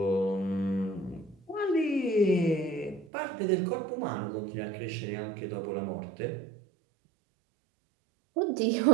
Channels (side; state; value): left; drops out; at 3.1 s